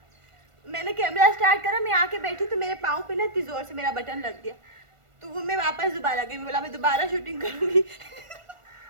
मैंने कैमरा स्टार्ट करा, मैं आके बैठी तो मेरे पाँव पे ना इतनी जोर से मेरा बटन लग गया, तो वो मैं वापस दोबारा गई, बोला मैं दोबारा शूटिंग करूंगी।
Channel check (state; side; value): late; left; 1.4 ms